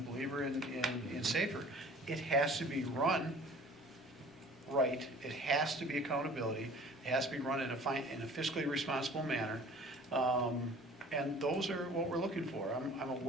believer in SAFER. It has to be run right. It has to be accountability. It has to be run in a fiscally responsible manner. And those are what we're looking for. I'm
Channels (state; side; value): normal; both; correlation 0.48